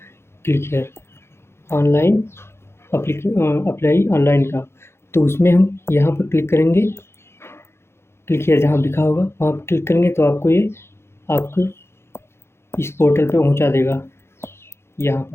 click here online apply online का। तो उसमें हम यहाँ पर क्लिक करेंगे, क्लिक हियर जहाँ लिखा होगा वहाँ पर क्लिक करेंगे तो आपको ये आपको इस पोर्टल पे पहुँचा देगा, यहाँ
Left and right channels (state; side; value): late; right; 0.12 ms